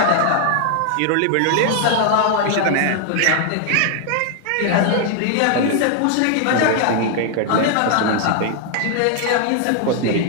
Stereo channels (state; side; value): different; both; correlation 0.00